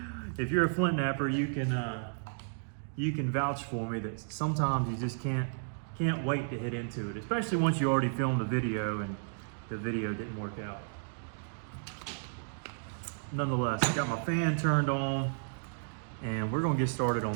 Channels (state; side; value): silent; left; digital silence